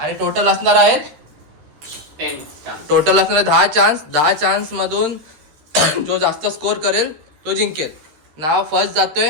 टोटल असणार आहेत 10 चान्स. 10 चान्स मधून जो जास्त स्कोर करेल तो जिंकेल. नाव फर्स्ट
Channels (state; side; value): late; left; 13 ms